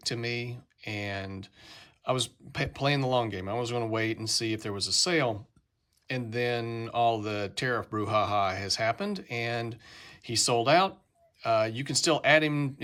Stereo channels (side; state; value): both; identical; correlation 1.00